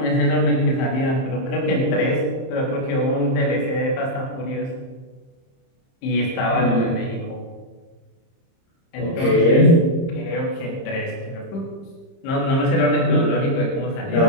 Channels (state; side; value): late; right; 30 ms